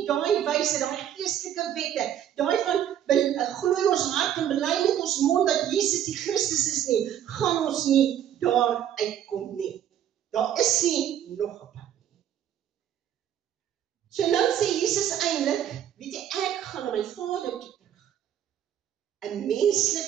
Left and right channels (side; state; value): left; quieter; 10.4 dB